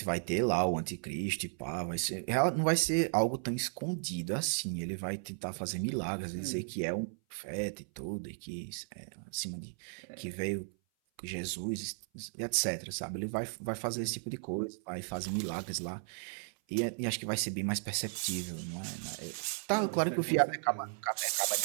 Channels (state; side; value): silent; left; 54 dB below the other